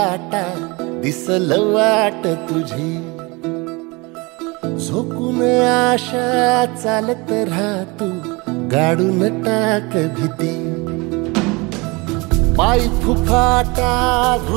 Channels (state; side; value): quieter; left; 26.3 dB